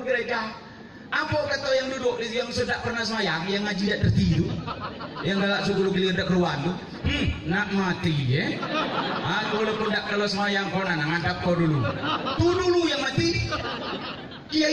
gereja? Apa kata yang duduk yang sudah pernah semayang, yang ngaji tidak tertidur, yang galak suku gilir tidak keluar tuh, nak mati ya? Aku walaupun tidak kalau semayang kau nana ngadap kau dulu, tu dulu yang mati.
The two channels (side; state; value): both; identical; correlation 1.00